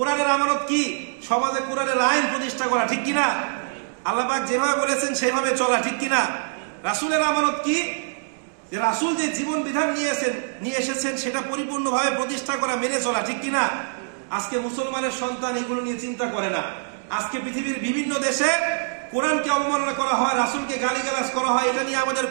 আমানত কি? সমাজে কোরআনের আইন প্রতিষ্ঠা করা, ঠিক কিনা? আল্লাহ পাক যেভাবে বলেছেন সেভাবে চলা, ঠিক কিনা? রাসূলের আমানত কি? যে রাসূল যে জীবন বিধান নিয়ে এসেছেন সেটা পরিপূর্ণভাবে প্রতিষ্ঠা করা, মেনে চলা, ঠিক কিনা? আজকে মুসলমানের সন্তান এগুলো নিয়ে চিন্তা করে না। আজকে পৃথিবীর বিভিন্ন দেশে কোরআনকে অবমাননা করা হয়, রাসূলকে গালিগালাজ করা হয়, এটা নিয়ে আমাদের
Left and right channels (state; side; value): silent; left; digital silence